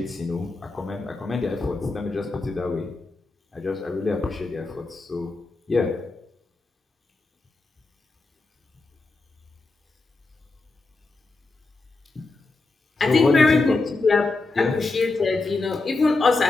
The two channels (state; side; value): quieter; right; 3.5 dB